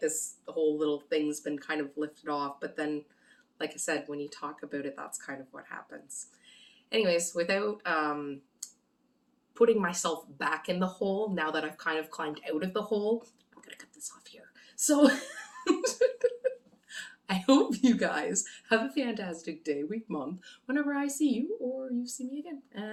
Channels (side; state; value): both; identical; correlation 1.00